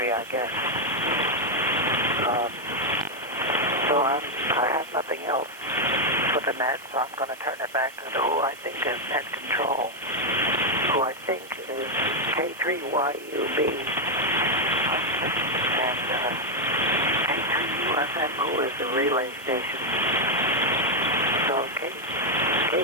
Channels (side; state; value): right; noise; hiss, 21 dB below the sound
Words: I guess. So I have nothing else for the net, so I'm going to turn it back to who I think is net control, who I think is K3YUB, and K3UFM, who is the relay station. So